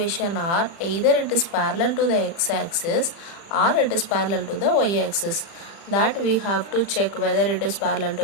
are either it is parallel to the x-axis or it is parallel to the y-axis. That we have to check whether it is parallel to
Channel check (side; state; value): right; late; 36 ms